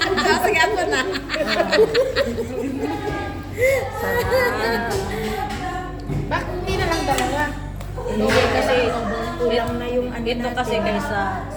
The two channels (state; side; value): identical; both; correlation 1.00